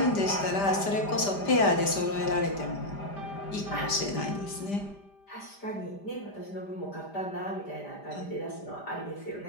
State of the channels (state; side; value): late; right; 5.0 ms